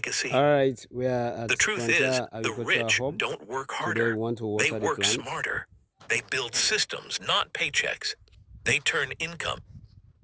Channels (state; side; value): identical; both; correlation 1.00